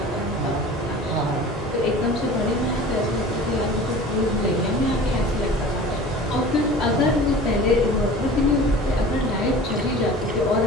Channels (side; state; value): both; normal; correlation 0.40